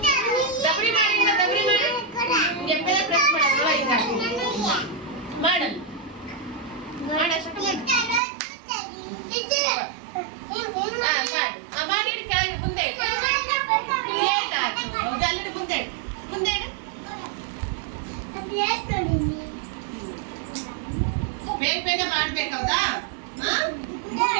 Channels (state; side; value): drops out; left; at 8.2 s